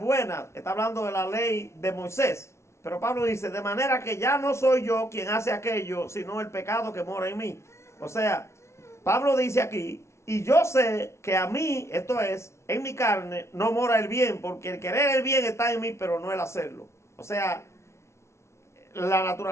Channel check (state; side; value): late; right; 0.13 ms